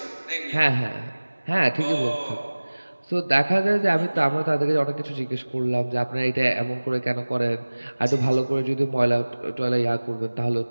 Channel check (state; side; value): inverted; both; correlation -1.00